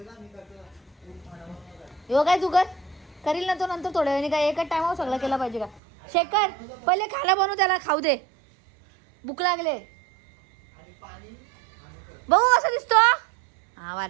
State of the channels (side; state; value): left; drops out; at 5.8 s